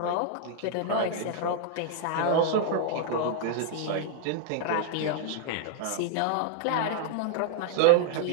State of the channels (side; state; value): both; different; correlation -0.01